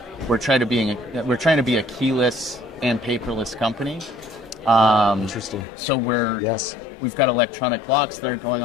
we're trying to be a keyless and paperless company. Interesting. So we've got electronic locks that are going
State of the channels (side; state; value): right; drops out; at 5.7 s